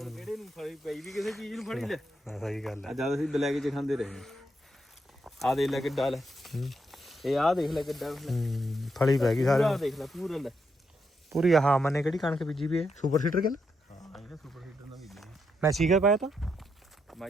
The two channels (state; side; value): normal; both; correlation 0.80